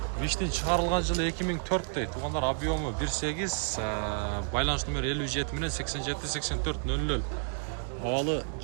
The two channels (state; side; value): silent; left; 57 dB below the other